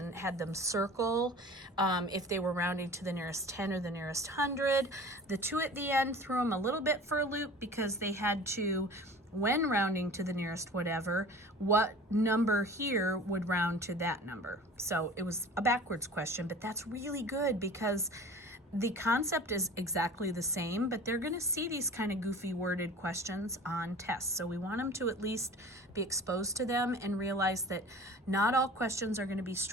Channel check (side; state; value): both; normal; correlation 0.41